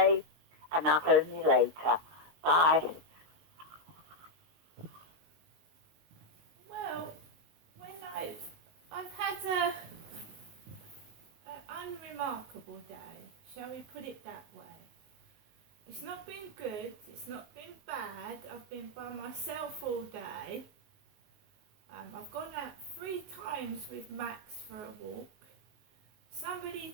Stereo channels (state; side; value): late; left; 19 ms